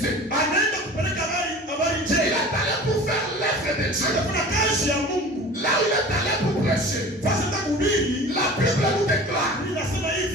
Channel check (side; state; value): both; normal; correlation 0.40